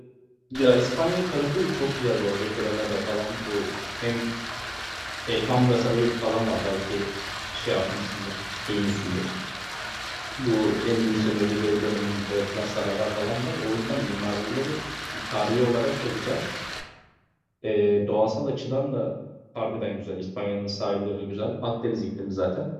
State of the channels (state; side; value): identical; both; correlation 1.00